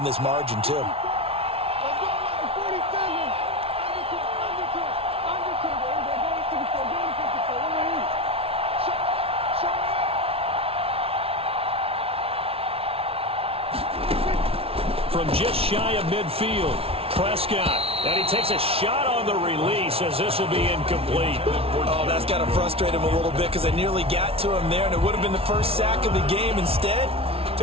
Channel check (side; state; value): left; late; 0.28 ms